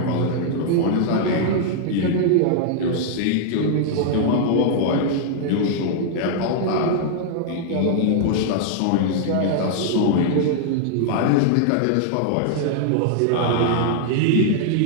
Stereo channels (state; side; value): different; both; correlation -0.01